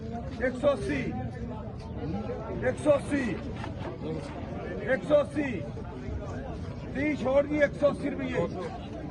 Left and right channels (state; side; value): identical; both; correlation 1.00